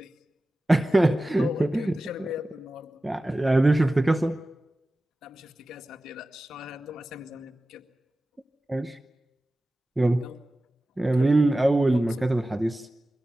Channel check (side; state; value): both; normal; correlation 0.95